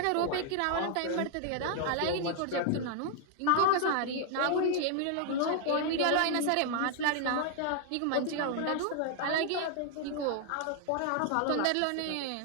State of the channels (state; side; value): different; both; correlation 0.00